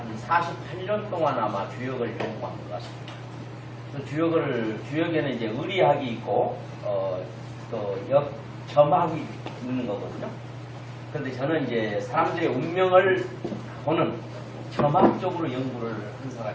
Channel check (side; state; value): both; identical; correlation 1.00